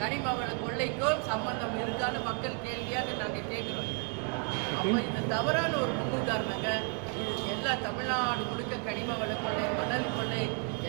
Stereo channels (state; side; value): quieter; left; 39.0 dB